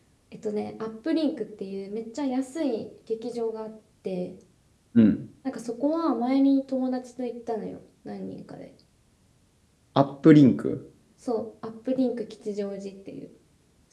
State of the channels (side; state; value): both; identical; correlation 1.00